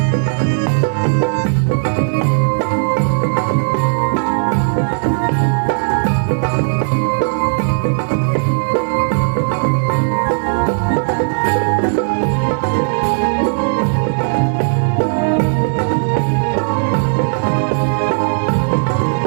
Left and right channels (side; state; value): left; silent; digital silence